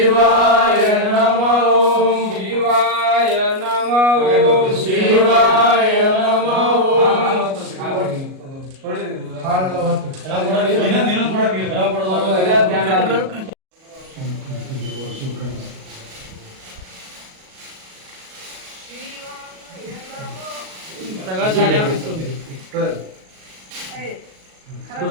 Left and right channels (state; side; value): late; left; 37 ms